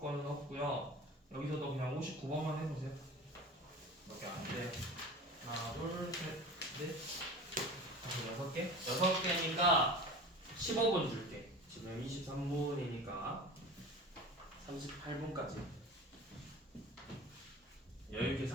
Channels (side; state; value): both; normal; correlation 0.36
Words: 없고요. 여기서도 그냥 59번만 해보세요. 몇 개 안 돼요. 하나, 둘, 셋, 넷, 다섯, 6개? 6개니까 15분 줄게. 지금 23분이니까 38분까지. 여유있게